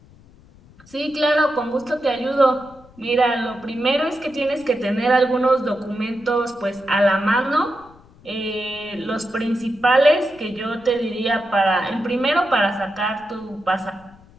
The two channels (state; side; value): noise; left; rumble, 25 dB below the sound